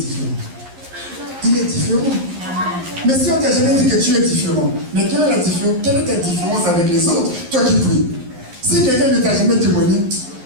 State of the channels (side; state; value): left; late; 11 ms